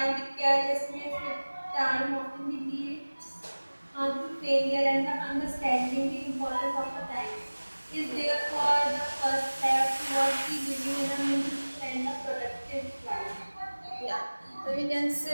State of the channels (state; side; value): inverted; both; correlation -1.00